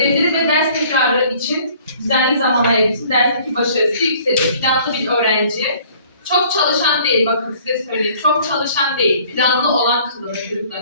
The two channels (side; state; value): both; inverted; correlation -0.55